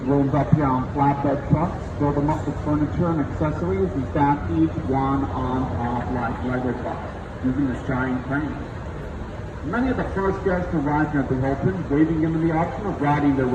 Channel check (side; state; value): both; identical; correlation 1.00